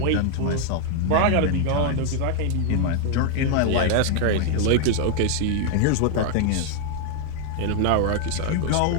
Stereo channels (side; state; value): both; different; correlation 0.00